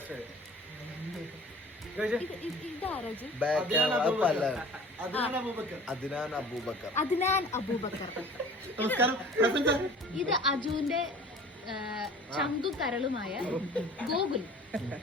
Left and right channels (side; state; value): both; normal; correlation 0.45